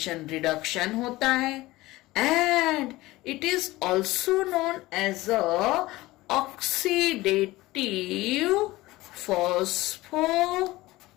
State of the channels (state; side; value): quieter; right; 18.8 dB